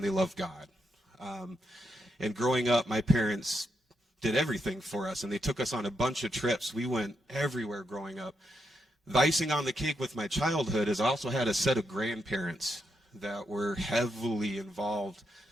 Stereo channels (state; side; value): normal; both; correlation 0.82